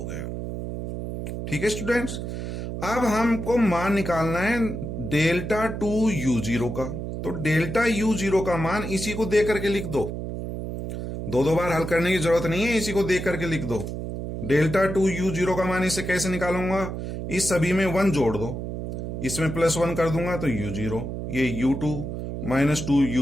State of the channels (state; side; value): noise; right; hum, 6 dB below the sound